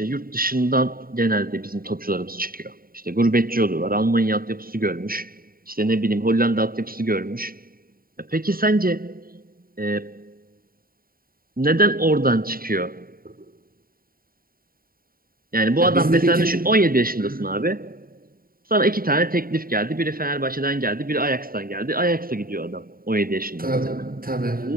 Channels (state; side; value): late; left; 0.43 ms